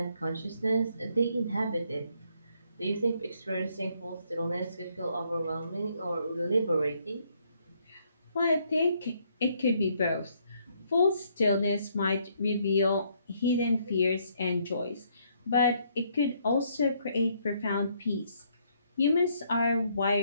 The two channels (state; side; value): inverted; both; correlation -0.70